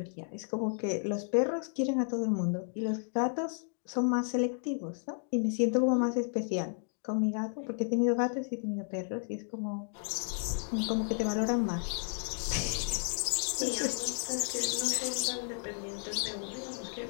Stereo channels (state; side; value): silent; right; 56 dB below the other